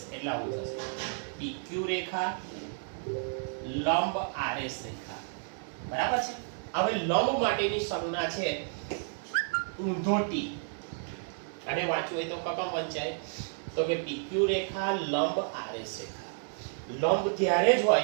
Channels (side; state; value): left; silent; 57 dB below the other